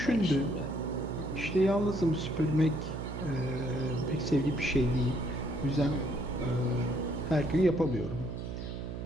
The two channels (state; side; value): noise; right; hum, 6 dB below the sound